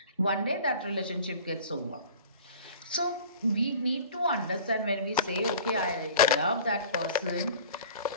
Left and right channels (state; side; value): inverted; both; correlation -0.43